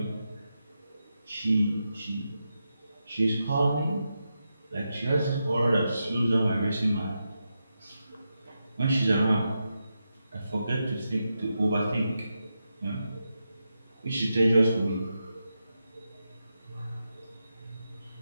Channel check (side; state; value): both; inverted; correlation -0.88